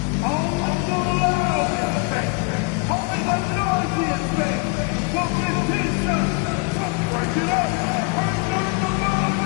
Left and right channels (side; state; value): right; quieter; 30.1 dB